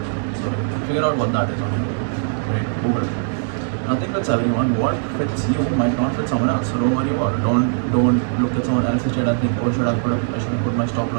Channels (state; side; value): silent; left; 59 dB below the other